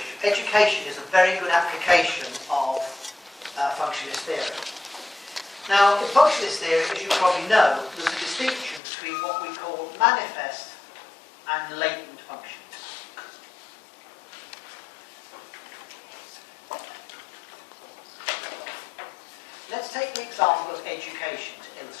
Education is a very good application of functionist theory. Now, in functionist theory, as you probably know, there's a distinction between what we call manifest and latent functions. Let's take the example of education to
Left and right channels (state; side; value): drops out; right; at 8.8 s